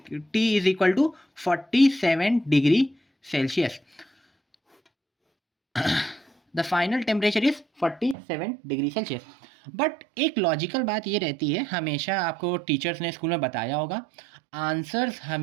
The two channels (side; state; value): left; drops out; at 8.2 s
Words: is equal to 47 degree Celsius. The final temperature is 47 degree Celsius. But एक लॉजिकल बात ये रहती है, हमेशा आपको टीचर्स ने स्कूल में बताया होगा, आंसर्स